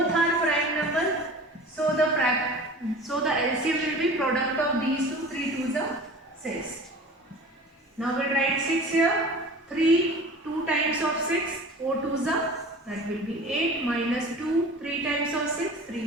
are prime number, so the LCM will be product of these two. 3 2s are 6. Now we'll write 6 here. 3 2 times of 6, 4 2s are, that will be 8, minus 2 3 times of 6,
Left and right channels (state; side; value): normal; both; correlation 0.40